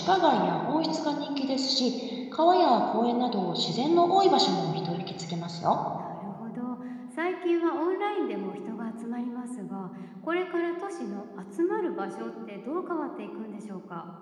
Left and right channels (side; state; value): both; identical; correlation 1.00